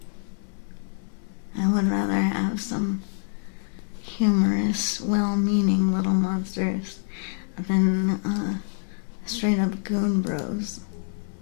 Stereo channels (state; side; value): silent; right; 61 dB below the other